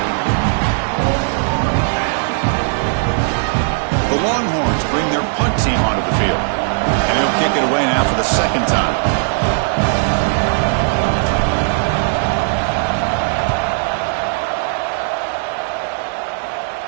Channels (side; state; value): left; silent; digital silence